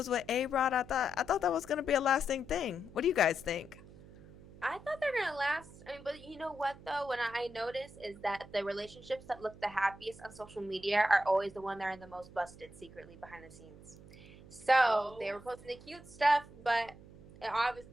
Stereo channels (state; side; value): noise; right; hum, 19 dB below the sound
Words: with A-Rod. I thought that was going to be a lasting thing. What do you guys think? I thought they're gonna last. I mean, but you know what though? When I notice is that the relationships that look the happiest on social media are always the one that are the most busted secretly behind the scenes. So they were posting the cute stuff, but it